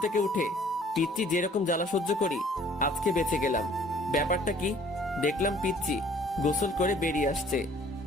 থেকে উঠে পিচ্চি যেরকম জ্বালা সহ্য করি, আজকে বেঁচে গেলাম। ব্যাপারটা কি? দেখলাম পিচ্চি গোসল করে বেরিয়ে আসছে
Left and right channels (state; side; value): normal; both; correlation 0.55